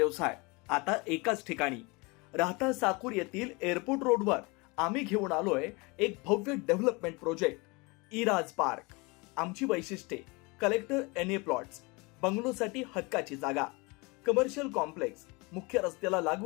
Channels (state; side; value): quieter; right; 27.0 dB